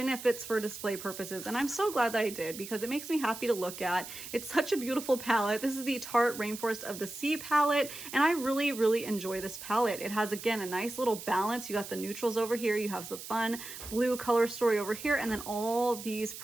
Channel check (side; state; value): right; noise; hiss, 11 dB below the sound